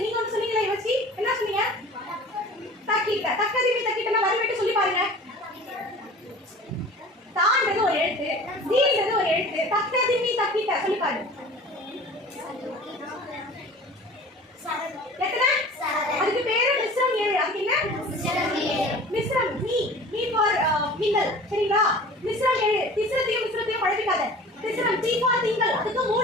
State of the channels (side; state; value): both; normal; correlation 0.42